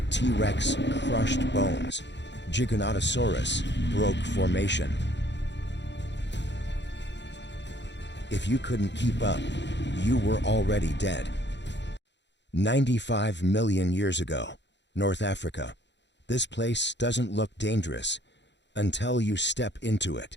T-Rex crushed bones. Giganotosaurus broke formation. If you couldn't keep up, you were already dead. 95 million years ago, North Africa. This place doesn't look dangerous until you step into it.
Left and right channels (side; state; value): right; late; 0.52 ms